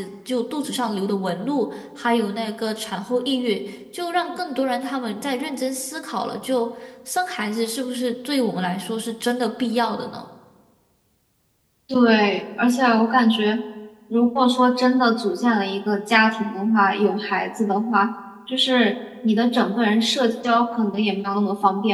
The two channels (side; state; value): both; identical; correlation 1.00